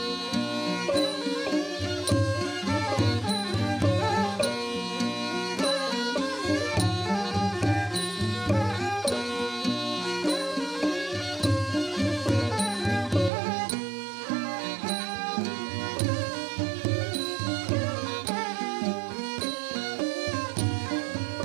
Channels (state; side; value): drops out; left; at 13.3 s